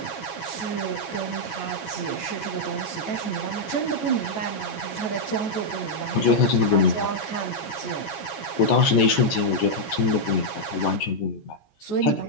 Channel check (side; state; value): right; late; 14 ms